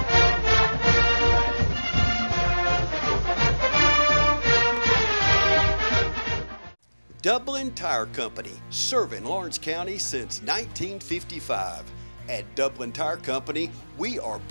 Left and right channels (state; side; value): inverted; both; correlation -1.00